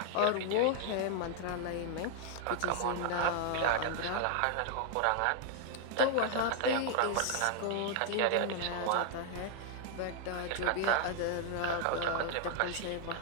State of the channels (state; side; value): different; both; correlation 0.00